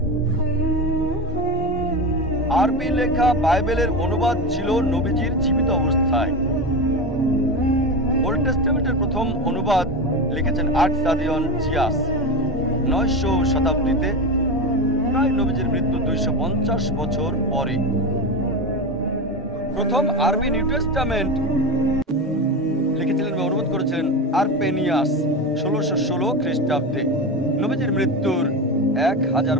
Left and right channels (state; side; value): normal; both; correlation 0.20